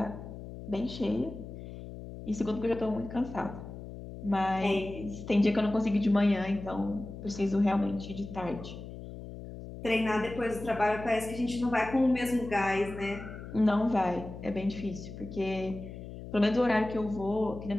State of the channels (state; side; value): noise; left; hum, 11 dB below the sound